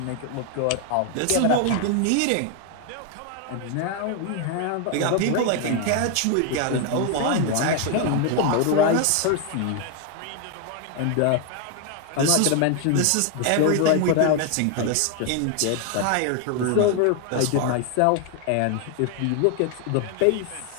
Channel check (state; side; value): different; both; correlation 0.00